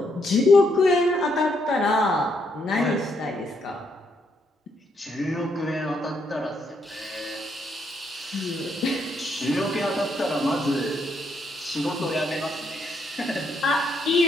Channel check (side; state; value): both; normal; correlation 0.75